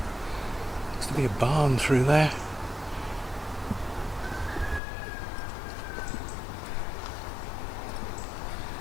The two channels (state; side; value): drops out; right; at 4.8 s